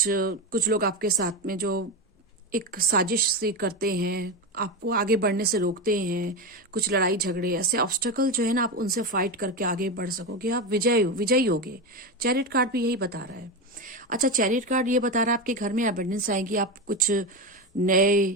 लोग आपके साथ में जो एक साजिश से करते हैं, आपको आगे बढ़ने से रोकते हैं, कुछ लड़ाई झगड़े, ऐसे ऑब्स्टेकल जो है ना, आप उनसे फाइट करके आगे बढ़ सकोगे, आप विजयी होगे। चैरियट कार्ड भी यही बता रहा है। अच्छा, चैरियट कार्ड ये बता रहा है आपके घर में अबंडेंस आएगी, आप कुछ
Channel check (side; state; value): both; normal; correlation 0.16